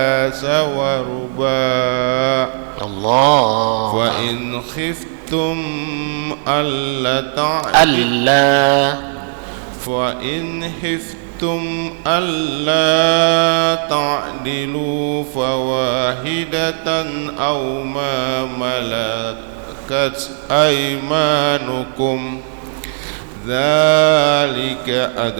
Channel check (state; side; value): silent; left; digital silence